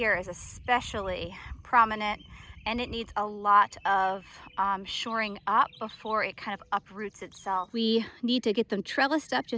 is especially prominent, and it needs a lot of shoring up before it kind of uproots itself. We need to get them trellised up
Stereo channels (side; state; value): both; identical; correlation 1.00